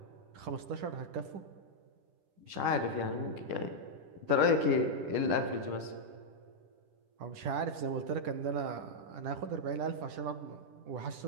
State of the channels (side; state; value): left; late; 10 ms